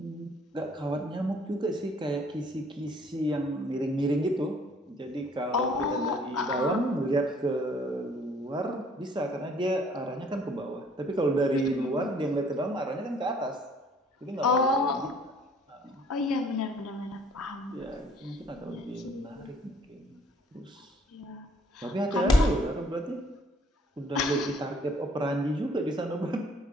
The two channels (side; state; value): both; normal; correlation 0.59